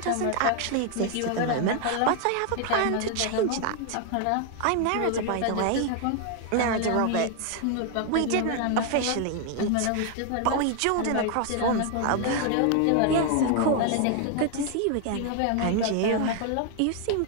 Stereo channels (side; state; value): both; different; correlation 0.00